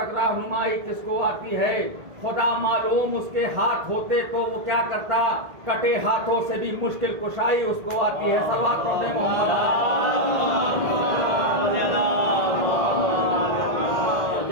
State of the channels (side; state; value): left; late; 1.8 ms